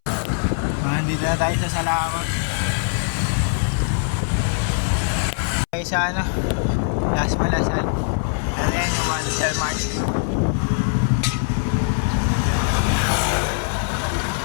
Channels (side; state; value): right; silent; 63 dB below the other